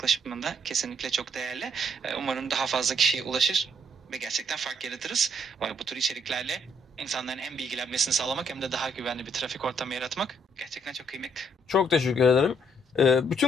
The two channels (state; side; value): normal; both; correlation 0.69